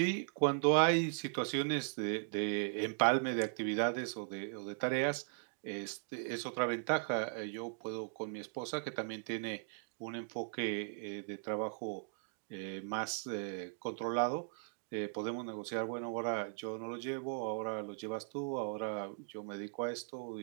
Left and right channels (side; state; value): left; silent; digital silence